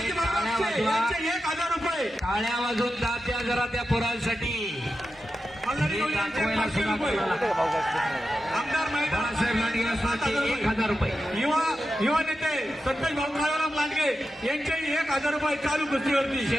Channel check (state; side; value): normal; both; correlation 0.90